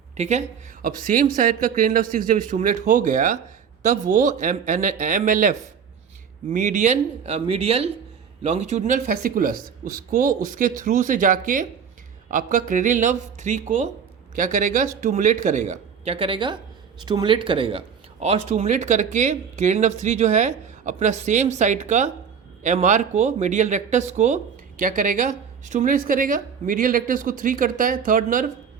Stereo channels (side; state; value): left; quieter; 7.1 dB